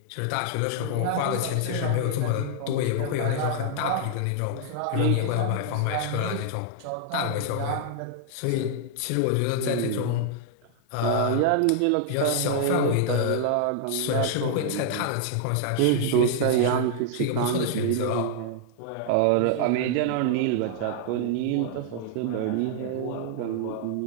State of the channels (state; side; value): different; both; correlation 0.00